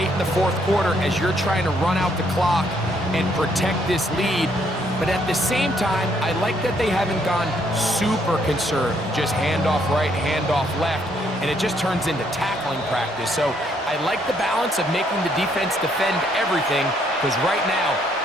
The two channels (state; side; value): normal; both; correlation 0.70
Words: in the 4th quarter as you're trying to run out the clock and protect this lead. But at the same time, I like that they haven't gone super conservative. Just handoff right, handoff left, and it just turns into tackling practice. So I like the balance of making the defense defend everything, because right now,